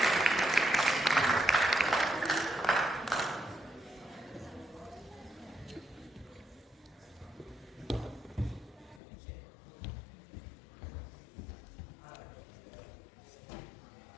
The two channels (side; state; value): right; drops out; at 9.0 s